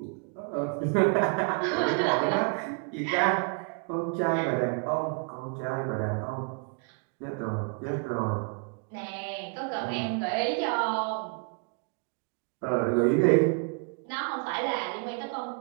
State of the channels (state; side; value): quieter; left; 38.0 dB